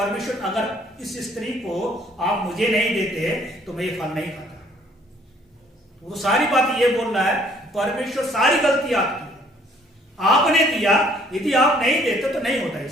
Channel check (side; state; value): both; normal; correlation 0.61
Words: अगर इस स्त्री को आप मुझे नहीं देते तो मैं ये फल नहीं खाता। वो सारी बात ये बोल रहा है, परमेश्वर सारी गलती आपकी, आपने दिया, यदि आप नहीं देते तो नहीं होता